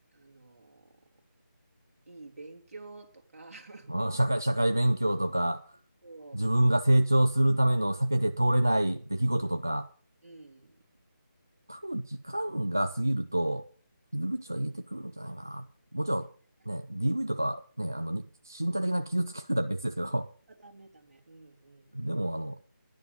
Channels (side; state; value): both; inverted; correlation -0.99